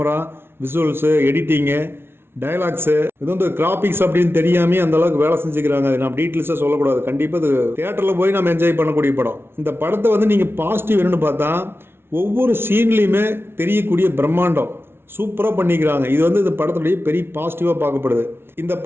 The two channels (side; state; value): left; late; 0.12 ms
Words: விசுவல்ஸு, எடிட்டிங்கு, டயலாக்ஸு, இது கிராபிக்ஸ் அப்படின்னு தெரியாமே அந்த அளவுக்கு வேலை செஞ்சுக்கிறாங்க. அது நம்ம டீட்டெயில்ஸாக சொல்லக்கூடாது. கண்டிப்பாக இது தியேட்டரில் போய் நம்ம என்ஜாய் பண்ணக்கூடிய படம். இந்த படத்தை நீங்கள் பாசிட்டிவ் என்னன்னு பார்த்தா, ஒவ்வொரு சீன்லேயுமே தெரியக்கூடிய பிரம்மாண்டம் சூப்பராக பண்ணிக்கிறாங்க. இது இந்த படத்துடைய பெரிய பாசிட்டிவாக பார்க்கப்படுது. இந்த